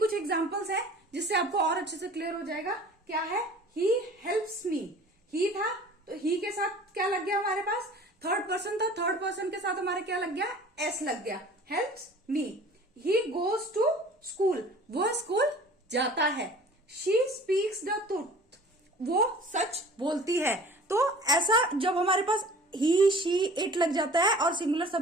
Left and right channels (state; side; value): normal; both; correlation 0.46